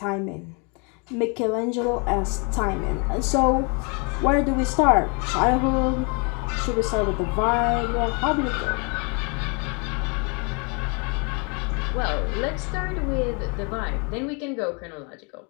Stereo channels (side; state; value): right; quieter; 34.0 dB